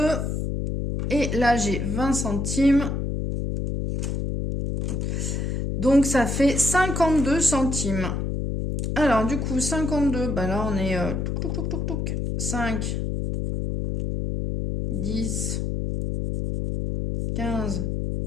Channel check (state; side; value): noise; left; hum, 1 dB below the sound